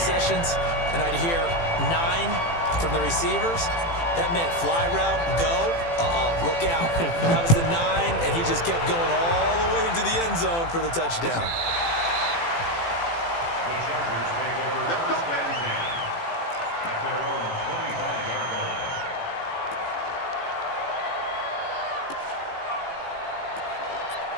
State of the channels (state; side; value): late; right; 18 ms